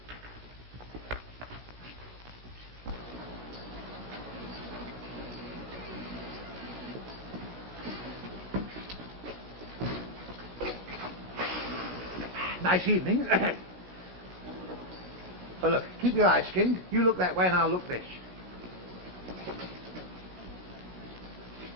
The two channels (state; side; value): late; left; 16 ms